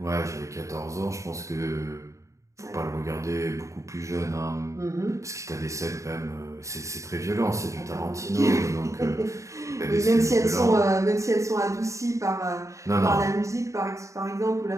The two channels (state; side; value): late; left; 0.15 ms